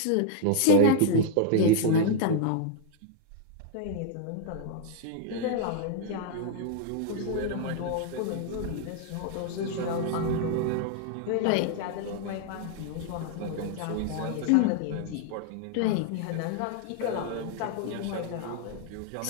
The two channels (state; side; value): different; both; correlation 0.00